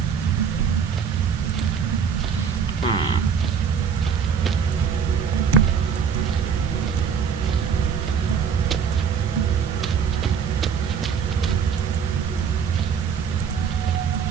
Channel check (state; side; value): quieter; left; 6.9 dB